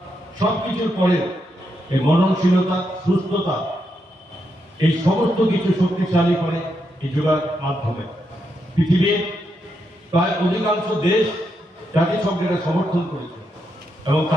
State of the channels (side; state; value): both; normal; correlation 0.82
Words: সব কিছুর পরে এই মননশীলতা, সুস্থতা, এই সমস্ত কিছু শক্তিশালী করে এই যোগার মাধ্যমে। পৃথিবীর প্রায় অধিকাংশ দেশ জাতিসংঘের সমর্থন করেছে এবং